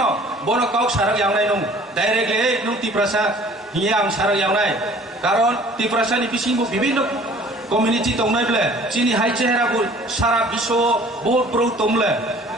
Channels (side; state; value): both; normal; correlation 0.51